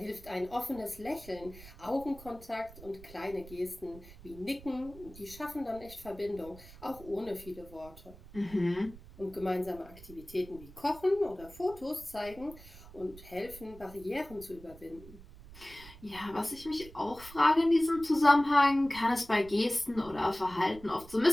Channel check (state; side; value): noise; right; rumble, 18 dB below the sound